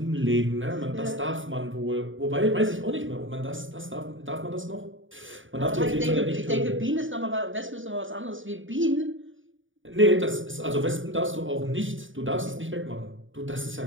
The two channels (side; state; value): left; late; 0.57 ms